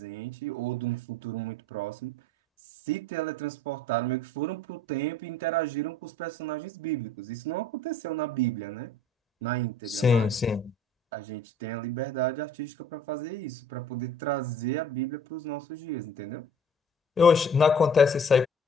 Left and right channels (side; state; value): both; normal; correlation 0.50